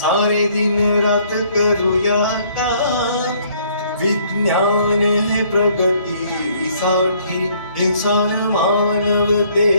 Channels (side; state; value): both; inverted; correlation -0.63